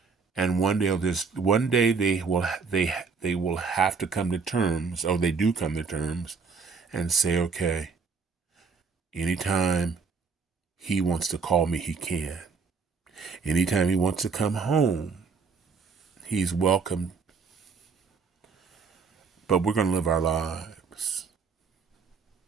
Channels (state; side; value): quieter; left; 5.2 dB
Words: And one day they will have to come to terms, or they do come to terms, and say, okay, anytime he wants to call me, he can. Anytime he wants to come home, he's welcome. But we're going to live our lives.